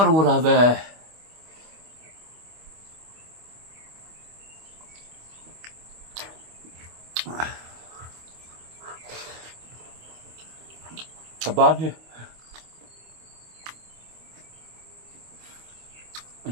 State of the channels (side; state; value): left; late; 25 ms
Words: về cả ban đi